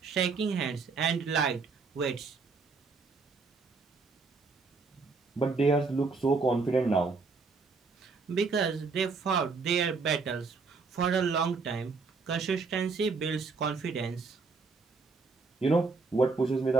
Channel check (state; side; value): quieter; left; 4.4 dB